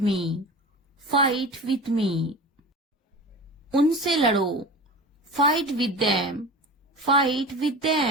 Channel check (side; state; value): both; normal; correlation 0.33